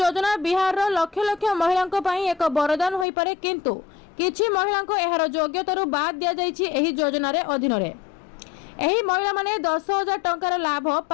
बिहार रो लक्ष लक्ष महिलांक पई एक वरदान होई पारे, किंतु किछि महिलांक एहार योग्यतारू बाद दिया जाइछि। एही योजना रे अधीन रे एही महिला माने 10,000 टंकार लाभ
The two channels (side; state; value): right; drops out; at 3.1 s